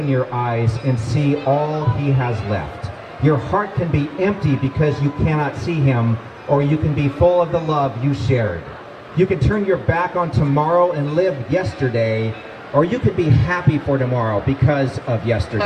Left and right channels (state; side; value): identical; both; correlation 1.00